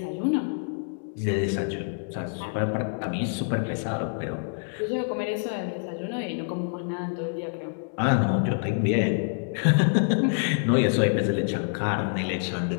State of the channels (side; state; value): right; silent; digital silence